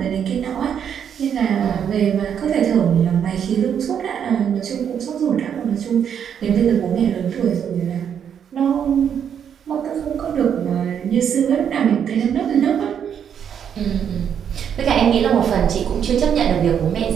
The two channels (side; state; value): left; quieter; 8.3 dB